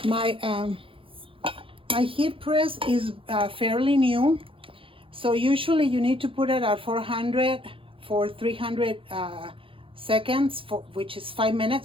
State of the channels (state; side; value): late; left; 0.26 ms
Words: My heat press is fairly new, So usually you need to put it at 400 for 300 seconds, which is 5